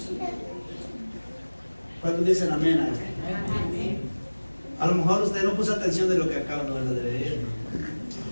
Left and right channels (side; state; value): both; inverted; correlation -1.00